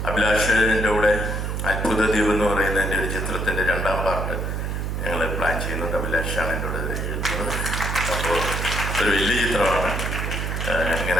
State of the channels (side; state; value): right; noise; hum, 2 dB below the sound